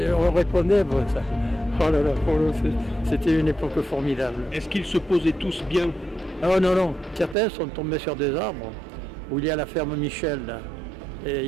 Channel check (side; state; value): left; drops out; at 7.4 s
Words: répondait pour ça. Oh là là, c'était une époque formidable. Est-ce qu'ils se posaient tous bien? Oh non, non, certains sont tombés sur des arbres, où il y a la ferme Michel, là. Et